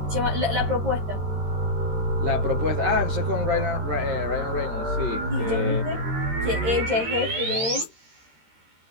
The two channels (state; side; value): late; left; 13 ms